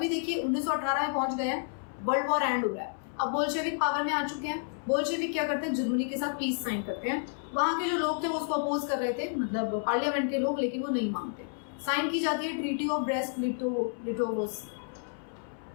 देखिए 1918 में पहुंच गए हैं, वर्ल्ड वॉर एंड हो रहा है, अब बोल्शेविक पावर में आ चुके हैं। बोल्शेविक क्या करते हैं, जर्मनी के साथ पीस साइन करते हैं। वहां के जो लोग थे वो उसको अपोज कर रहे थे, मतलब पार्लियामेंट के लोग, लेकिन वो नहीं मानते। साइन की जाती है treaty of Brest Litovsk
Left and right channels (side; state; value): right; silent; 57 dB below the other